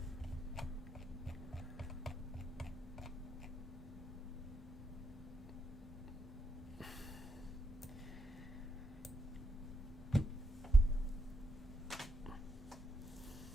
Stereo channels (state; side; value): normal; both; correlation 0.81